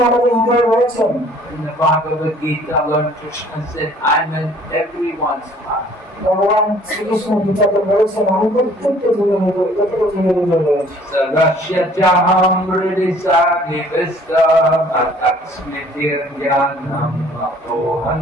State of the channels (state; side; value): normal; both; correlation 0.55